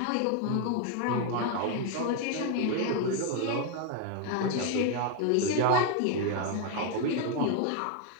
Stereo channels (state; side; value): different; both; correlation 0.01